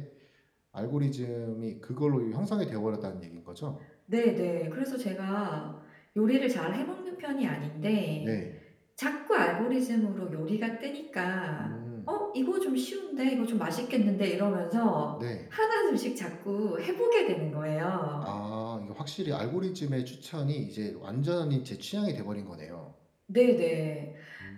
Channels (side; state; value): both; identical; correlation 1.00